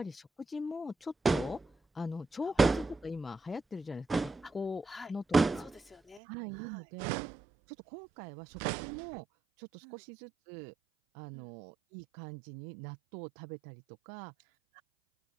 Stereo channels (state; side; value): drops out; left; at 6.2 s